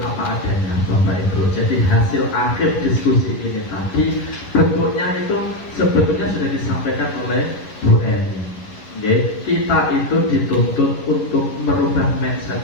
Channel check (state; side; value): late; right; 11 ms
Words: apa adanya Bapak Ibu. Jadi hasil akhir diskusi ini tadi bentuknya itu sebetulnya sudah disampaikan oleh Bu Eni. Kita itu dituntut untuk merubah mindset